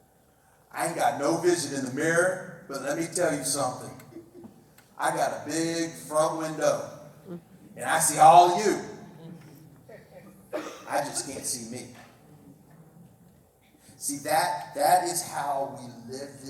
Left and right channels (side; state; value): both; identical; correlation 1.00